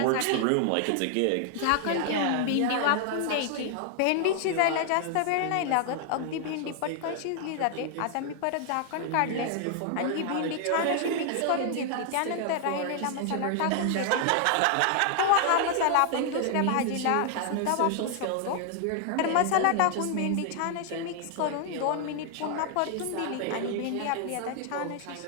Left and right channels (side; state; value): both; different; correlation 0.00